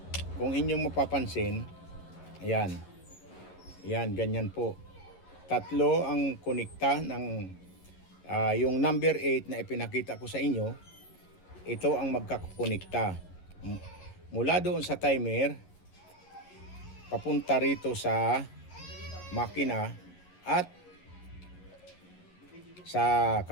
Kung inyong mapapansin, ayan. Ayan, ganyan po. Tatlo ang konekta ng yung number 8 na ipinakita ko sa inyo. Ito ang magkakonekta. Mula doon sa timer, papunta rito sa makina at sa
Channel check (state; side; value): late; right; 11 ms